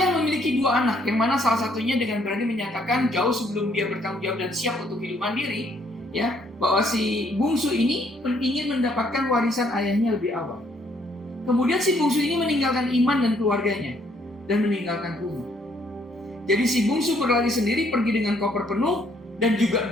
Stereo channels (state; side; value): normal; both; correlation 0.67